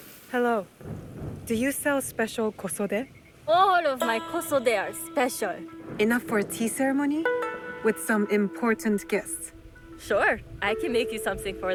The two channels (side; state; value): both; identical; correlation 1.00